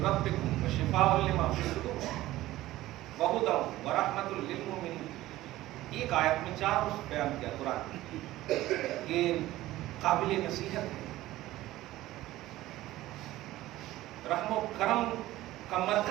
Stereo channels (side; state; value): left; quieter; 16.1 dB